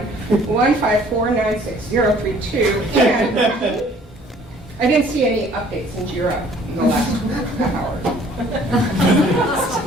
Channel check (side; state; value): both; normal; correlation 0.56